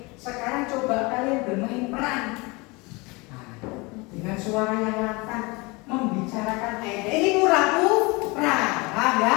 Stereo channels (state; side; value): quieter; right; 26.0 dB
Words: sekarang coba kalian bermain peran. Nah, dengan suara yang lantang membicarakan aib. Ini pura-pura, paham ya?